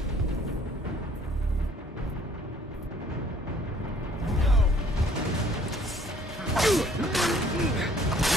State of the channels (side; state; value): both; normal; correlation 0.58